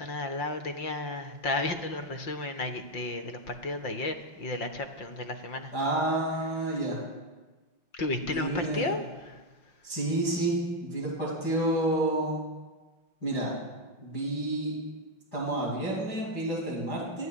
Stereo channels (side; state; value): right; late; 5.7 ms